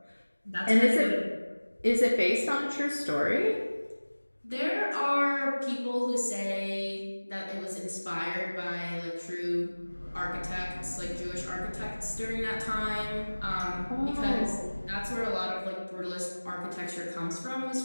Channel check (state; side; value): inverted; both; correlation -1.00